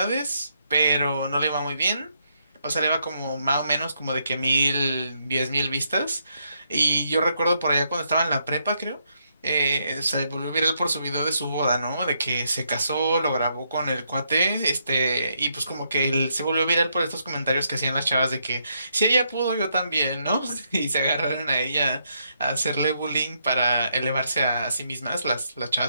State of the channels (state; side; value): inverted; both; correlation -0.77